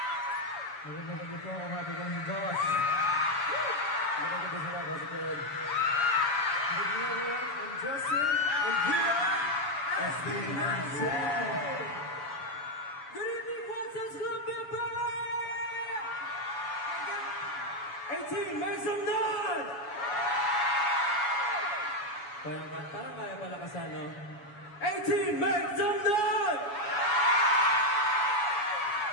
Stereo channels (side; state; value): right; late; 7.1 ms